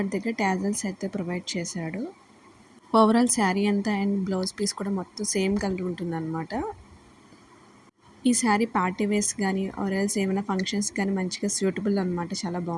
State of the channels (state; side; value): identical; both; correlation 1.00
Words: దగ్గర టాజల్స్ అయితే ప్రొవైడ్ చేశాడు. ఓవరాల్ శారీ అంతా అండ్ బ్లౌజ్ పీస్ కూడా మొత్తం సేమ్ కలర్ ఉంటుందన్నమాట. ఈ శారీ పార్టీ వేర్స్ కానీ ఆర్ ఎల్స్ ఏమైనా ఫంక్షన్స్ కానీ మంచిగా సూటబుల్ అనమాట. చాలా